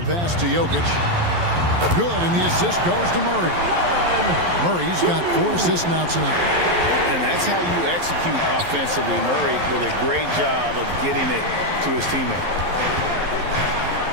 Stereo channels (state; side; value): late; left; 11 ms